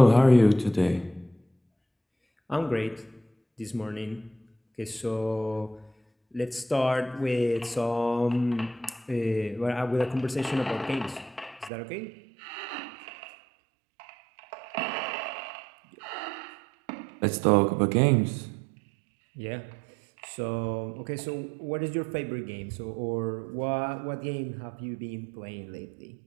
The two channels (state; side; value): drops out; left; at 11.7 s